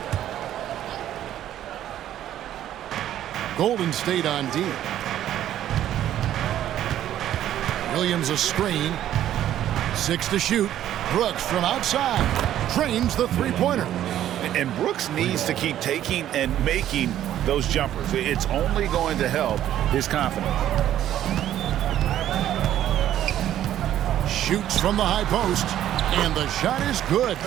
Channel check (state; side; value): quieter; left; 11.8 dB